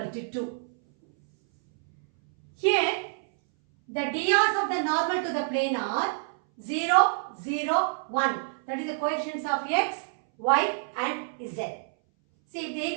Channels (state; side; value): silent; left; 59 dB below the other